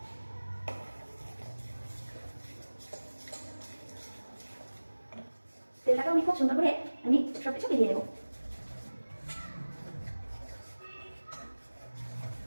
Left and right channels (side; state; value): both; inverted; correlation -1.00